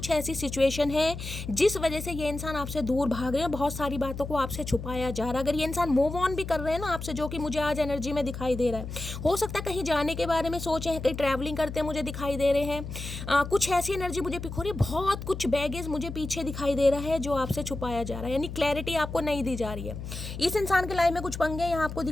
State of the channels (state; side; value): noise; left; hum, 8 dB below the sound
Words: ऐसी सिचुएशन है जिस वजह से ये इंसान आपसे दूर भाग रहे हैं, बहुत सारी बातों को आपसे छुपाया जा रहा है। अगर ये इंसान मूव ऑन भी कर रहे हैं ना आपसे, जो कि मुझे आज एनर्जी में दिखाई दे रहा है, हो सकता है कहीं जाने के बारे में सोचे हैं, कहीं ट्रैवलिंग करते मुझे दिखाई दे रहे हैं, कुछ ऐसी एनर्जी मुझे पिक हो रही है, बहुत कुछ बैगेज मुझे पीछे दिखाई दे रहा है जो आपसे छुपाया जा रहा है, यानी क्लैरिटी आपको नहीं दी जा रही है। इस इंसान के लाइफ में कुछ पंगे यहाँ आपको